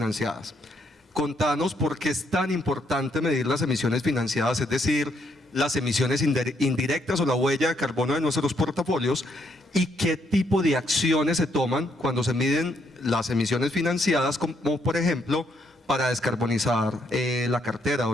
Contanos por qué es tan importante medir las emisiones financiadas, es decir, las emisiones indirectas o la huella de carbono de nuestros portafolios, y qué tipo de acciones se toman cuando se miden las emisiones financiadas, como por ejemplo para descarbonizar la cartera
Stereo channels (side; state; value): both; normal; correlation 0.73